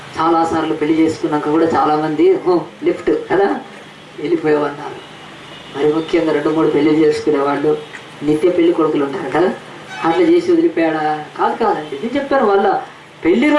చాలాసార్లు పెళ్లి చేసుకున్నాక కూడా చాలామంది లిఫ్ట్ కదా వెళ్ళిపోయామన్నారు. మరి ముఖ్యంగా 2-3 పెళ్లి చేసుకునేవాళ్ళు నిత్య పెళ్లి కొడుకులు ఉంటారు కదా, అట్లా చేసి వదిలిపోయాడా? కాదండి, నేను చెప్పాను. వాళ్ళ పెళ్లి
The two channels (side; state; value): both; identical; correlation 1.00